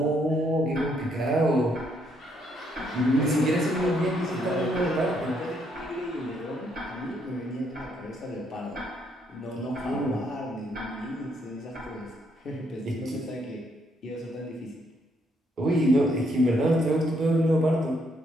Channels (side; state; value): both; normal; correlation 0.72